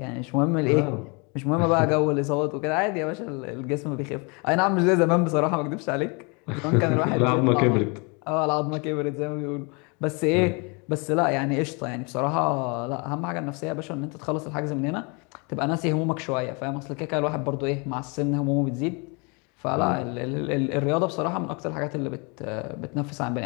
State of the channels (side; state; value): right; quieter; 31.6 dB